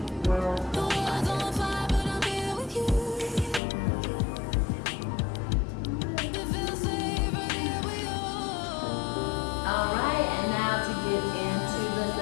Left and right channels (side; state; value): right; drops out; at 3.6 s